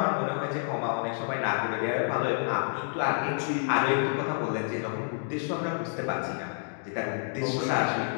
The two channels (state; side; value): silent; right; digital silence